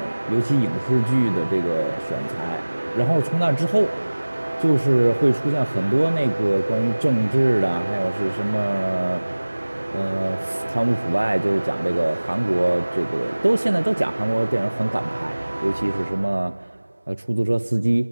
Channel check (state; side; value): inverted; both; correlation -1.00